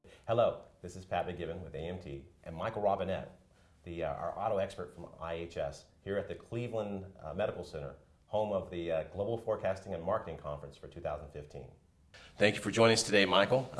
Hello, this is Pat McGibbon with AMT and Michael Robinette, our auto expert from IHS, here at the Cleveland Medical Center, home of the Global Forecasting and Marketing Conference for 2015. Thank you for joining us today, Michael.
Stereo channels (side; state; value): both; identical; correlation 1.00